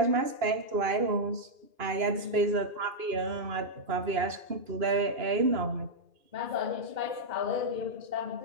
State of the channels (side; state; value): left; late; 2.9 ms